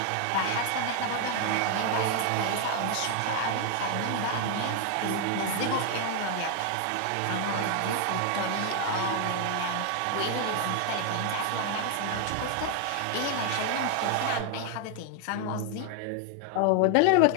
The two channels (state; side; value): different; both; correlation 0.00